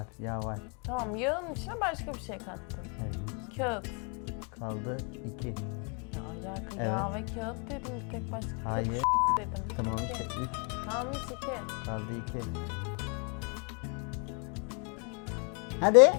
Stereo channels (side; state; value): right; quieter; 38.1 dB